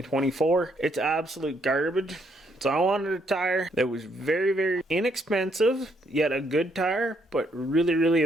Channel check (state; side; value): normal; both; correlation 0.72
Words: it's absolute garbage. So I wanted a tire that was very, very inexpensive, yet a good tire, but really, really